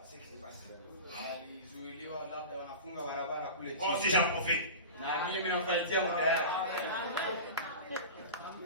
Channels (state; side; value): inverted; both; correlation -0.30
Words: ce qui s'est passé. Moi aussi j'en profite.